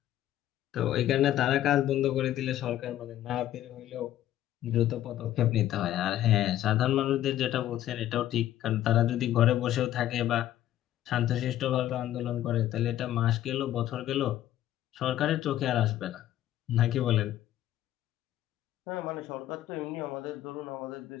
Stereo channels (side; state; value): right; quieter; 12.8 dB